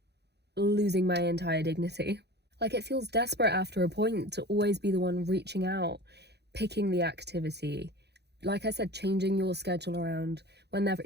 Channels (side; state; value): left; late; 0.48 ms